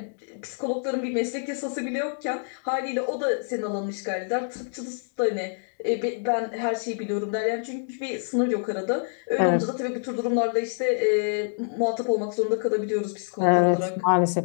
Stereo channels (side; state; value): right; silent; digital silence